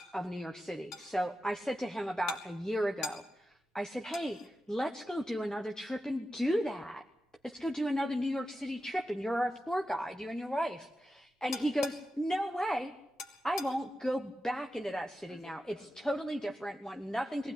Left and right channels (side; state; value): both; normal; correlation 0.91